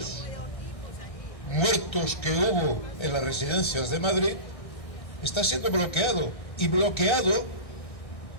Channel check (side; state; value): right; late; 1.6 ms